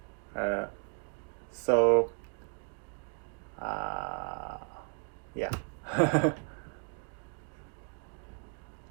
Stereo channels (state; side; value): quieter; left; 37.8 dB